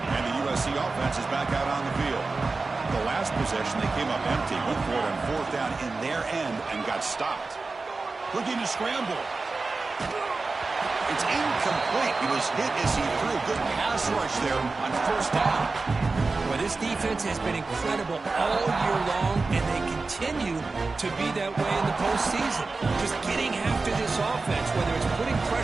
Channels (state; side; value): quieter; left; 3.8 dB